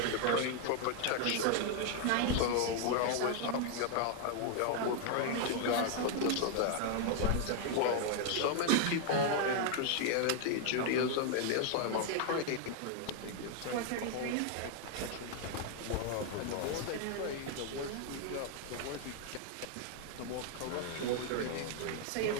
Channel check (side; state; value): both; different; correlation 0.00